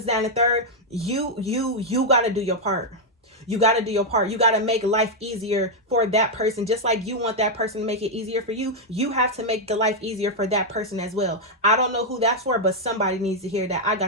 that and the third, you got to do your part. You got to do your part. You got to make life easier for that person. Just like you want that person to make it easier for you, you have to make the life easier for that person as well. I don't know who that's for, but somebody needs to hear that. I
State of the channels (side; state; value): both; normal; correlation -0.02